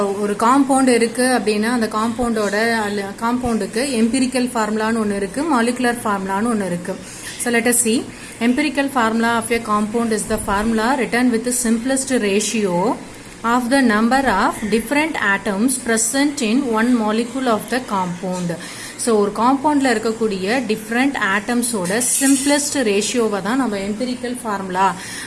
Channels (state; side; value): identical; both; correlation 1.00